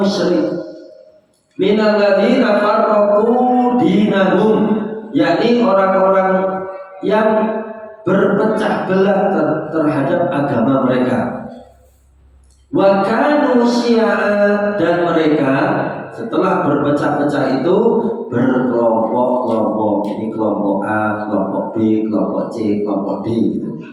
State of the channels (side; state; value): both; identical; correlation 1.00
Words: musyrik. Minal ladzina farraqu dinahum, yakni orang-orang yang berpecah belah terhadap agama mereka. Wa kanu syi'a, dan mereka setelah berpecah-pecah itu berkelompok-kelompok. Ini kelompok A, kelompok B, kelompok C, kelompok D gitu.